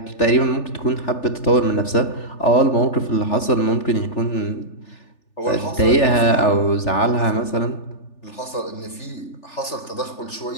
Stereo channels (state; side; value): late; right; 3.4 ms